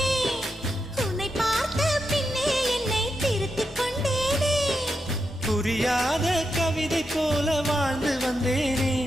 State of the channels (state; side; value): normal; both; correlation 0.86